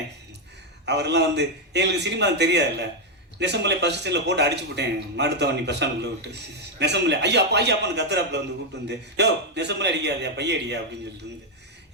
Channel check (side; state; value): both; normal; correlation 0.02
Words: அவரெல்லாம் எங்களுக்கு சினிமா தெரியாதுல்ல. நெசம்பலை பஸ் ஸ்டாண்டில் போட்டு அடிச்சு போட்டேன். மாடுத்தவனி பஸ் ஸ்டாண்டுக்குள்ளே விட்டு நெசம்பலை ஐயா அப்பான்னு கத்துறாப்புல கூப்பிட்டு யோ நெசம்பலை அடிக்காதியா பைய அடியா அப்படின்னு சொல்லிட்டு